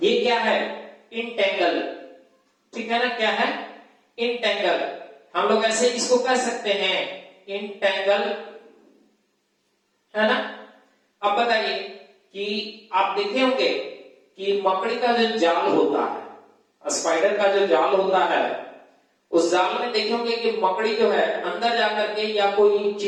क्या है, इंटेंगल, ठीक है ना। क्या है, इंटेंगल। हम लोग ऐसे इसको कह सकते हैं इंटेंगल, है ना। अब बताइए कि आप देखे होंगे कि मकड़ी का जो जाल होता है, स्पाइडर का जो जाल होता है, उस जाल में देखे होंगे कि मकड़ी जो है अंदर जाकर के, या कोई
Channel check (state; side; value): identical; both; correlation 1.00